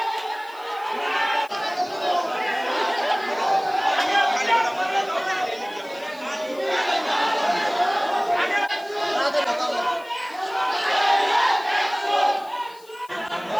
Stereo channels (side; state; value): left; noise; hiss, 25 dB below the sound